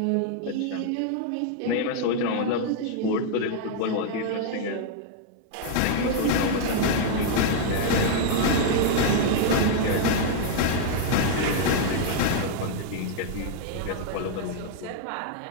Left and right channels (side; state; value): both; different; correlation 0.00